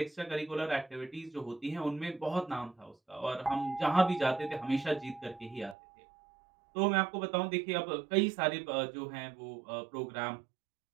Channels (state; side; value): drops out; left; at 5.8 s